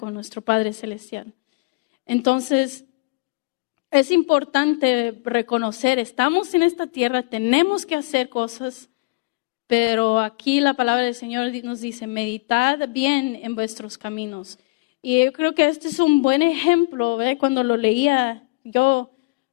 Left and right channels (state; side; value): quieter; right; 26.5 dB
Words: nuestro Padre Celestial. Entonces, es importante reconocer, estamos en esta tierra, tenemos que hacer cosas, pero aquí la palabra del Señor nos dice, meditad bien en vuestros caminos. Y yo creo que este es un buen ejemplo, ¿verdad? Cuando lo leía yo,